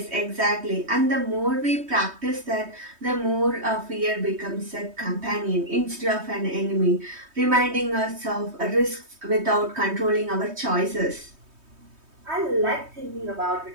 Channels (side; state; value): left; late; 3.2 ms